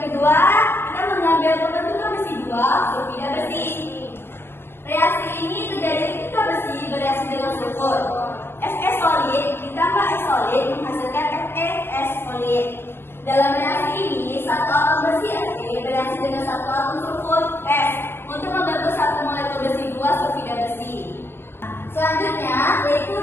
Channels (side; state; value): right; late; 0.11 ms